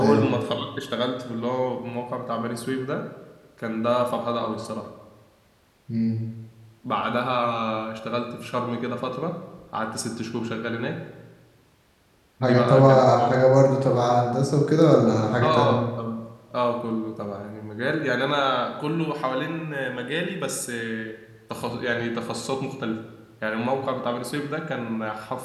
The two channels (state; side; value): identical; both; correlation 1.00